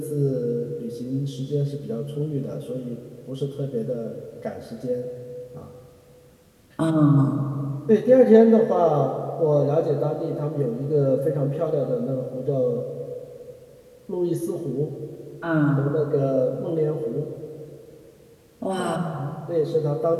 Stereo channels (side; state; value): both; identical; correlation 1.00